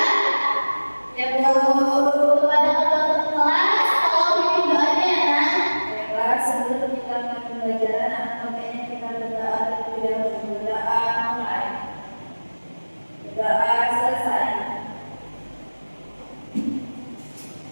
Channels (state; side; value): inverted; both; correlation -1.00